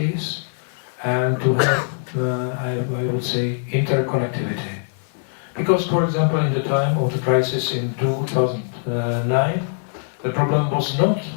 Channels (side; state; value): right; silent; 58 dB below the other